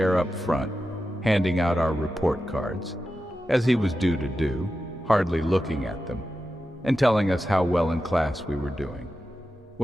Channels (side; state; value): both; normal; correlation 0.91